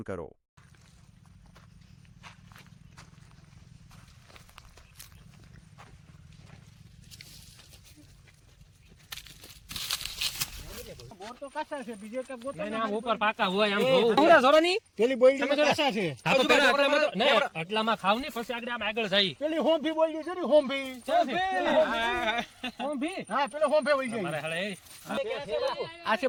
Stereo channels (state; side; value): identical; both; correlation 1.00